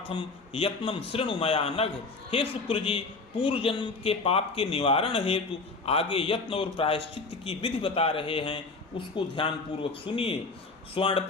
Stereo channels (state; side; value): quieter; right; 3.8 dB